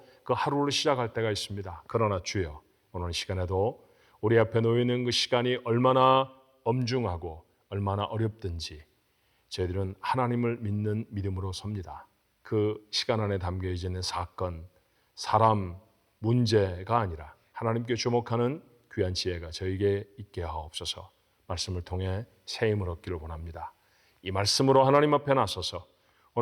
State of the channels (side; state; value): both; identical; correlation 1.00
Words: 그 하루를 시작할 때가 있습니다. 그러나 주여, 오늘 시간에도 우리 앞에 놓여있는 그 시간이 얼마나 엄중하고 얼마나 어렵든지 저희들은 하나님을 믿는 믿음으로 섭니다. 그 시간 안에 담겨 있는 사건, 사람, 문제가 아니라 하나님께 주목하는 귀한 지혜가 저에게 있게 하옵소서. 말씀을 통해 새 힘을 얻기를 원합니다. 이 말씀으로 하나님 앞에 나서서